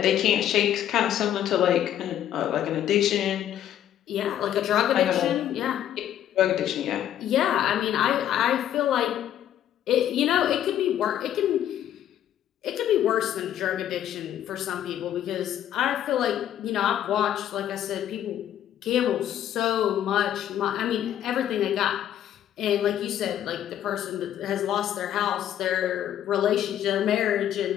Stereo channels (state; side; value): quieter; right; 11.0 dB